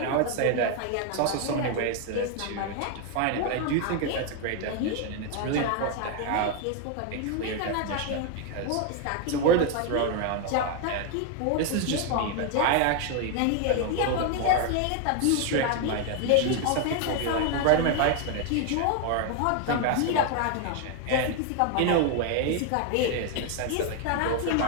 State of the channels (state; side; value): different; both; correlation 0.01